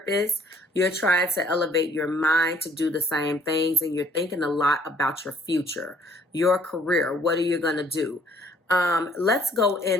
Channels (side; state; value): both; normal; correlation 0.60